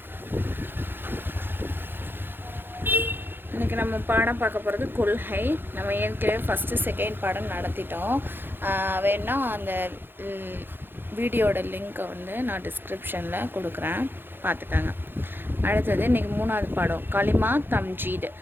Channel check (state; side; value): late; left; 0.10 ms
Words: இன்றைக்கி நம்ம பாடம் பார்க்க போகிறது கொள்கை. நம்ம ஏற்கனவே ஃபஸ்ட்டு செகண்ட் பாடம் நடத்திட்டோம். வேணா அந்த வீடியோட லிங்க்கை வந்து நான் டிஸ்கிரிப்ஷனில் கொடுக்குறேன், பார்த்துக்கோங்க. அடுத்தது இன்றைக்கி மூணாவது பாடம் கலிமா தம்ஜீத்.